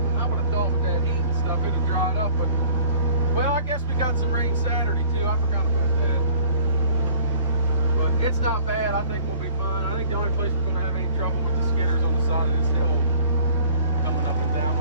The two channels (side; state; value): both; inverted; correlation -0.51